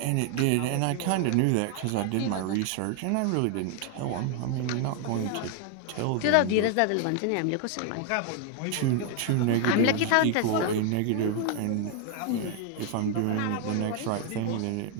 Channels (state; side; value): different; both; correlation 0.00